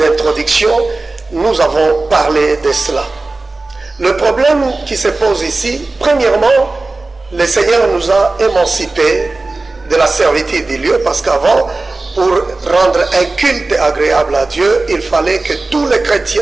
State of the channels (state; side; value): quieter; left; 3.3 dB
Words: nous avons parlé de cela. Le problème qui se pose ici, premièrement, le Seigneur nous a émancipés de la servitude des lieux, parce qu'avant, pour rendre un culte agréable à Dieu, il fallait que tous les chrétiens,